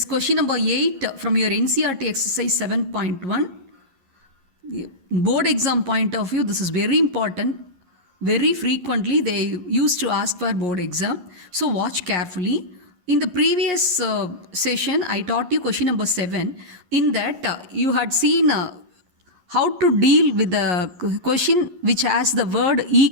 question number 8 from your NCERT exercise 7.1. Board exam point of view, this is very important. Very frequently they used to ask for board exam, so watch carefully. In the previous session, I taught you question number 7. In that, you had seen how to deal with the question which has the word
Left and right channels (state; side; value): late; left; 11 ms